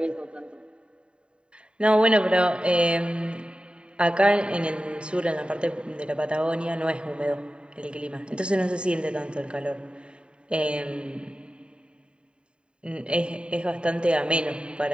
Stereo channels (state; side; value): late; left; 0.052 ms